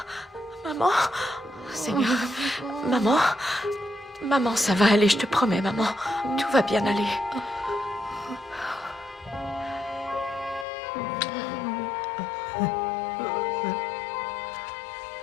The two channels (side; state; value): right; drops out; at 10.7 s